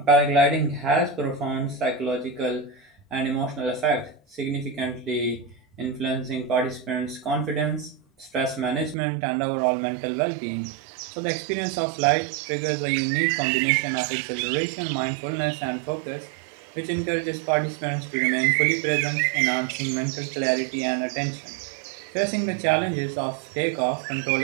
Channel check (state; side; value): drops out; left; at 9.0 s